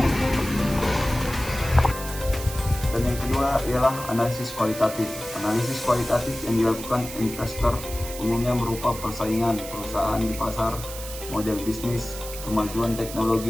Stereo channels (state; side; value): noise; right; hiss, 11 dB below the sound